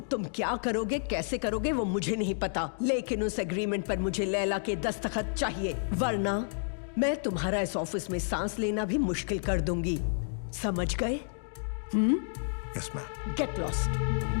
क्या करोगे, कैसे करोगे वो मुझे नहीं पता, लेकिन उस एग्रीमेंट पर मुझे लैला के दस्तखत चाहिए, वरना मैं तुम्हारा इस ऑफिस में सांस लेना भी मुश्किल कर दूंगी। समझ गए? Yes ma'am. Get lost.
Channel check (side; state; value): right; silent; digital silence